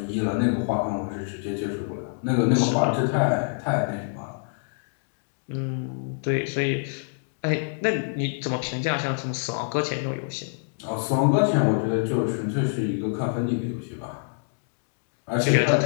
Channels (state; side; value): silent; right; digital silence